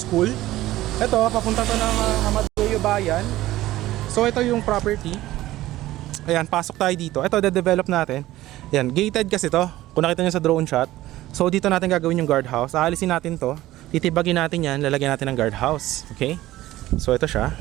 Ito, papunta to ng Amadeo Bayan. So ito yung property. Ayan, pasok tayo dito. Ito, de-develop natin. Ayan, gated kasi to. Kung nakita nyo sa drone shot. So dito natin gagawin yung guardhouse. Aalisin natin to. Titibagin natin yan. Lalagyan natin ng guardhouse. Okay? So ito siya.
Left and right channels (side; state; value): left; quieter; 15.9 dB